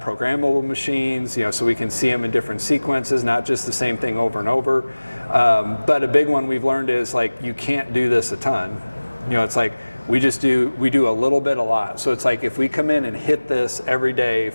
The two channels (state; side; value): inverted; both; correlation -1.00